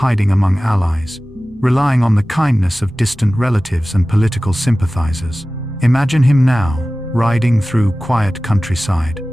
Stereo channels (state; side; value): normal; both; correlation 0.97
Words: among allies, relying on the kindness of distant relatives and political sympathizers. Imagine him now, riding through quiet countryside,